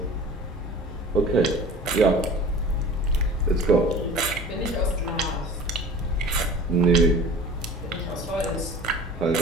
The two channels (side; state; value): both; normal; correlation 0.41